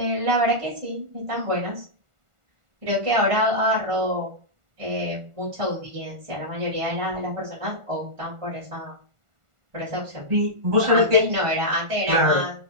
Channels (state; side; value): late; left; 1.4 ms